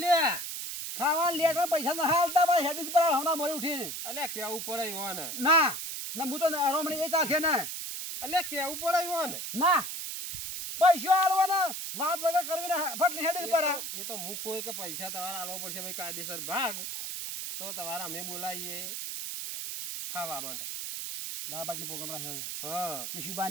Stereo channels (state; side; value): noise; right; hiss, 5 dB below the sound